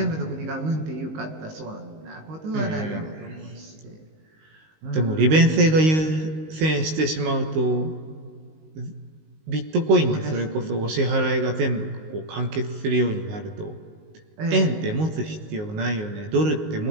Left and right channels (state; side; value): late; left; 19 ms